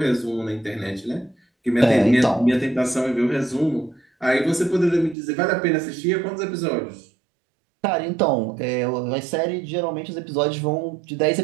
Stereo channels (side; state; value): left; drops out; at 5.2 s